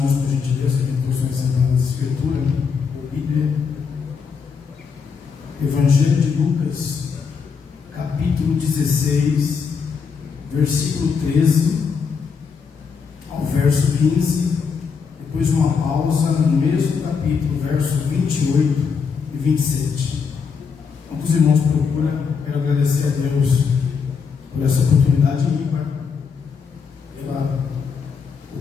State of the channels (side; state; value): right; quieter; 5.8 dB